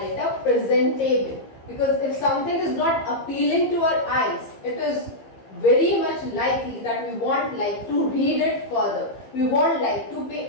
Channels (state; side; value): late; right; 15 ms